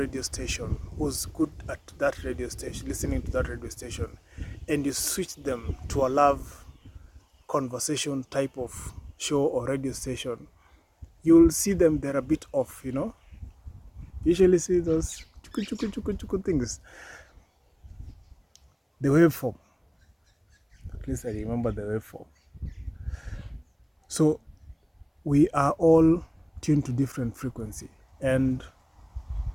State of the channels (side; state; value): both; identical; correlation 1.00